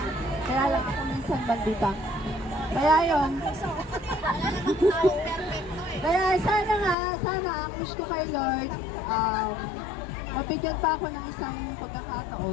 Kaya lang ako minsan bandita. Kaya yun. Kaya sana ang wish ko kay Lord, mabigyan pa ako ng isang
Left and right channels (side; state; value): right; drops out; at 7.0 s